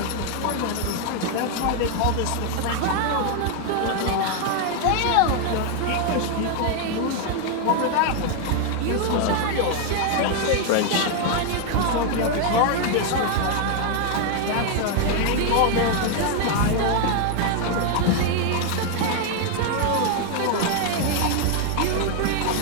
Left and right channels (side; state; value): both; different; correlation 0.00